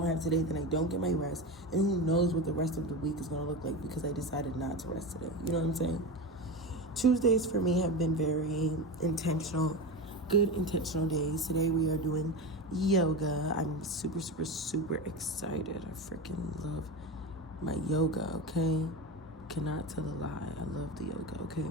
have today, then I don't get my rest. And who knows what the rest of the week is going to look like because I decided not to rest today. You know what I'm saying? Tuesdays for me have been very intentional, good intentional days. Today we are doing yoga. I'm super, super, super excited. I freaking love my yoga, okay? Cannot tell a lie. I love the yoga,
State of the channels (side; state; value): both; normal; correlation 0.22